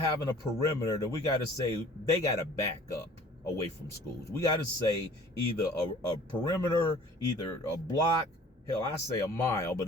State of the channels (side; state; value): both; normal; correlation 0.50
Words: a perimeter that we got to say they got to back up away from schools. We got to say either a perimeter, either a block, hell, I say a mile, but